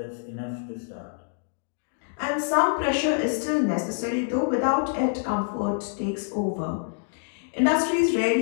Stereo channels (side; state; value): right; silent; digital silence